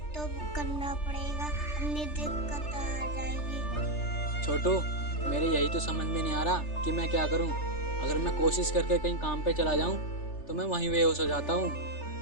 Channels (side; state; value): right; late; 3.3 ms